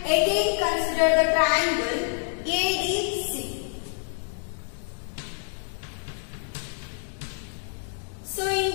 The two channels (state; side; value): silent; right; digital silence